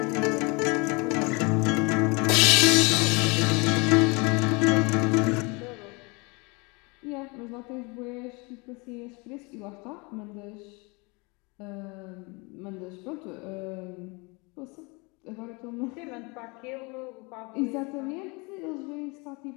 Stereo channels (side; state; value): right; quieter; 28.8 dB